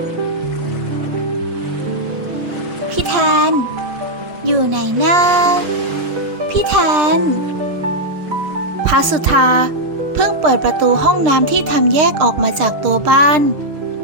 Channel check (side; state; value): left; late; 6.2 ms